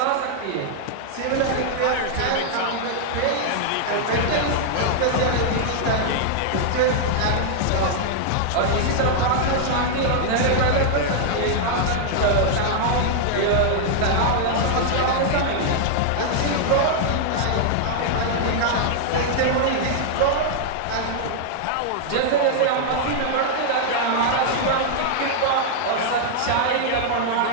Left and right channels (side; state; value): both; different; correlation -0.01